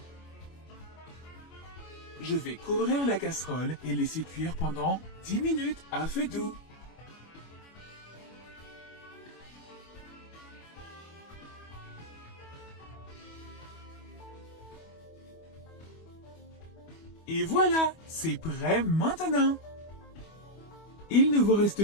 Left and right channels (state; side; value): late; right; 25 ms